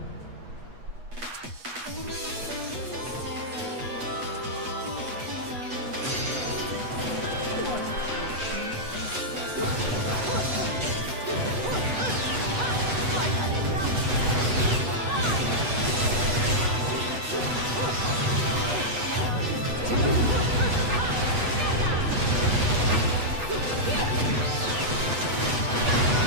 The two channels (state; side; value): late; left; 8.2 ms